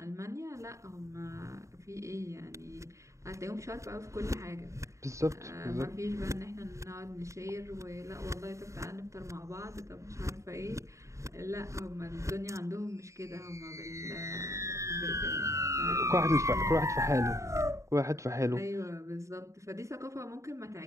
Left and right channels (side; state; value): left; late; 0.15 ms